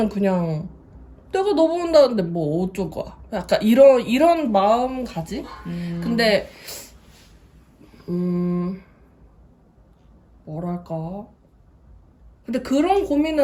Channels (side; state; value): both; identical; correlation 1.00